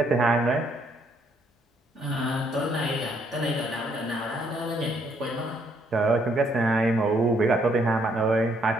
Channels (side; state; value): both; normal; correlation 0.69